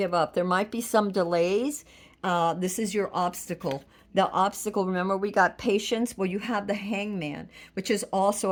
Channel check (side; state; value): both; identical; correlation 1.00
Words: up. There might be some delays. This is your obstacle. The obstacle, remember we got patience. Well, you have the Hangman, which is